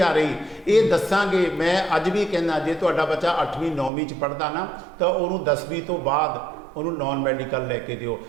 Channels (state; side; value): drops out; left; at 3.9 s